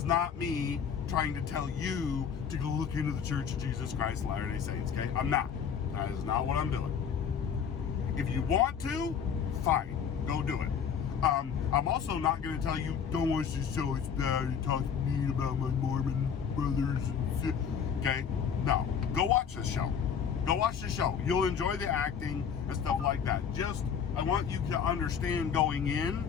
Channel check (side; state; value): right; quieter; 7.3 dB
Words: not me trying to tell you to go look into the Church of Jesus Christ of Latter-day Saints, okay? I'm not. That is not what I'm doing. If you want to, fine, go do it. I'm also not going to tell you, don't watch this show, it's bad, you talk mean about my Mormon brothers and okay? No, go watch this show. Go watch the show. You'll enjoy the acting and stuff like that. Just, I want you to understand going